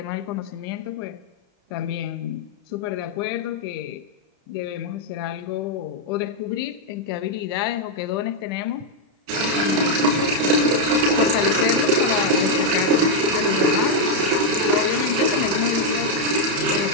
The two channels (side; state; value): left; late; 30 ms